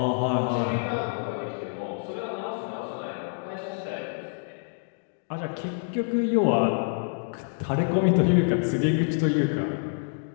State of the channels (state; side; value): silent; right; digital silence